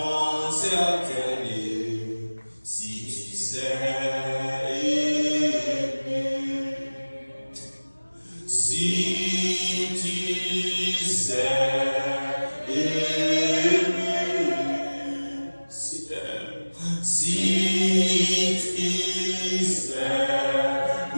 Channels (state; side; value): inverted; both; correlation -1.00